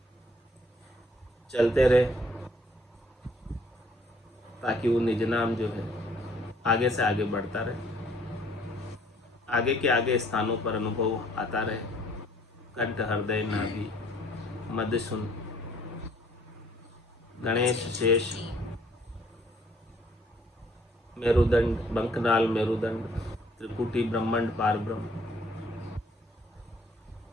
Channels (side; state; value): both; normal; correlation 0.61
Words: चलते रहे ताकि वो निज नाम जो है आगे से आगे बढ़ता रहे, आगे के आगे स्थानों पर अनुभव आता रहे। कंठ, हृदय, नाभि, मध्य सुन, गणेश, शेष, मेरुदंड, बंकनाल, मेरुदंड, त्रिकुटी, ब्रह्मांड, पार ब्रह्म,